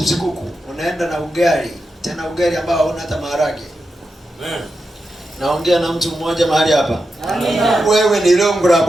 kuku, unaenda na ugali, tena ugali ambao hauna hata maharage. Naongea na mtu mmoja mahali hapa. Wewe ni lungu la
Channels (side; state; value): both; normal; correlation 0.88